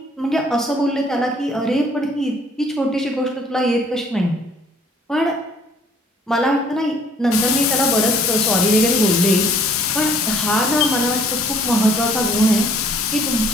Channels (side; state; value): both; normal; correlation 0.58